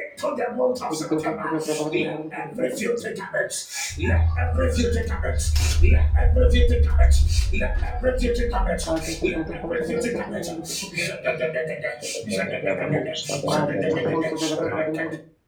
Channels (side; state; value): both; identical; correlation 1.00